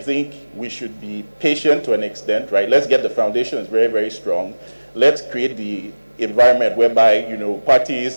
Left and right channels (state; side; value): inverted; both; correlation -1.00